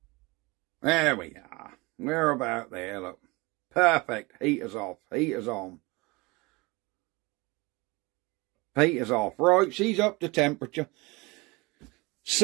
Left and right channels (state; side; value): quieter; left; 24.6 dB